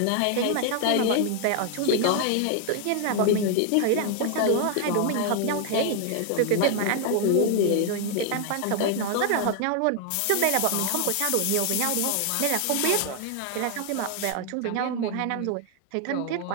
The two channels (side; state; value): both; different; correlation 0.00